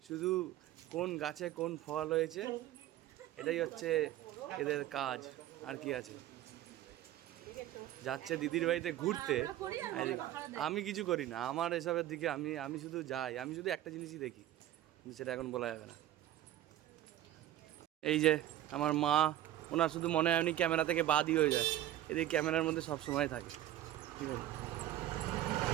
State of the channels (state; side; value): quieter; left; 13.1 dB